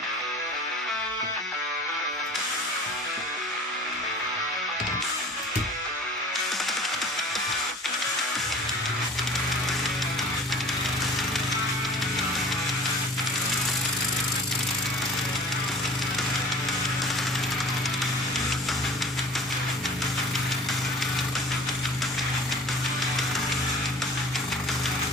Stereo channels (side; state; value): both; normal; correlation 0.44